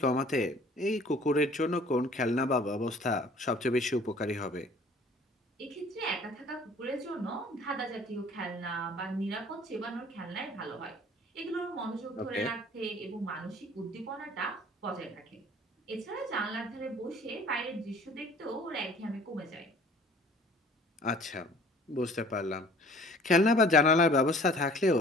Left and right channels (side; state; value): both; normal; correlation 0.51